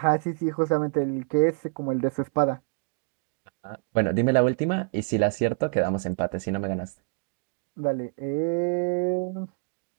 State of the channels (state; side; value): quieter; left; 37.3 dB